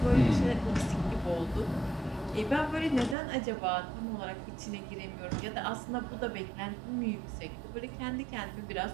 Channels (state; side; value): drops out; left; at 3.2 s